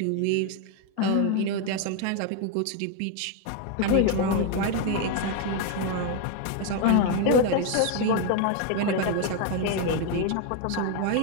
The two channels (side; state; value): both; different; correlation 0.01